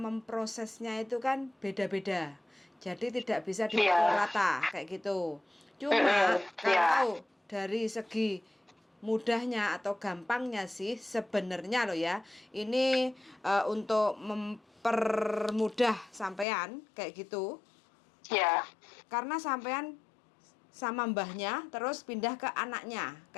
itu kan beda-beda. Jadi tidak bisa dipukul rata kayak gitu. Cuma kalau dari segi mudahnya atau gampangnya sih sebenarnya loh ya, ini untuk mempermudah sampean kayak gitu. Karena sampean sama mbahnya terus pindah ke anaknya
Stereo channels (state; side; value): drops out; right; at 16.4 s